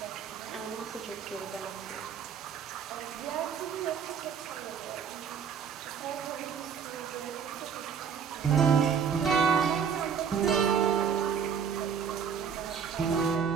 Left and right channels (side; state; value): left; quieter; 7.1 dB